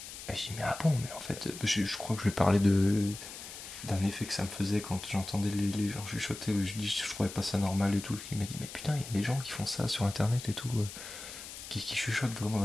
Et j'ai dit, mais ah bon, mais en fait, je crois que je lui parlais d'un effet que ça me faisait quand j'entendais les gens chuchoter. Je dis, je trouvais pas ça normal et tout. Il m'a dit, mais putain, il y a des gens qui font ça sur internet et tout, qui chuchotent vraiment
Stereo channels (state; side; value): noise; left; hiss, 12 dB below the sound